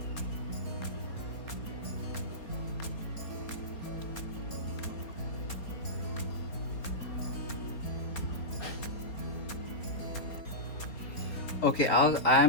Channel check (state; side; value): late; right; 4.3 ms